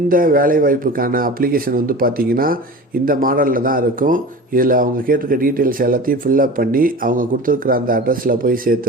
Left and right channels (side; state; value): both; normal; correlation 0.34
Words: வேலைவாய்ப்புக்கான அப்ளிகேஷன் வந்து பார்த்திங்கன்னா இந்த மாடலில் தான் இருக்கும். இதில் அவங்க கேட்டிருக்க டீட்டெயில்ஸ் எல்லாத்தையும் ஃபில்லப் பண்ணி அவங்க கொடுத்துருக்குற அந்த அட்ரஸில் போய்